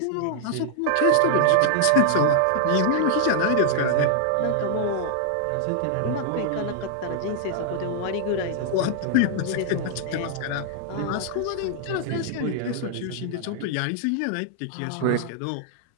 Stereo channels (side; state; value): both; different; correlation -0.01